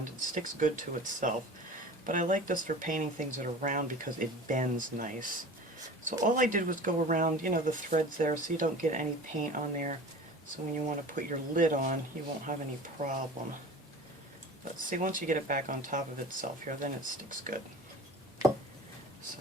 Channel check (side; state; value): both; normal; correlation 0.38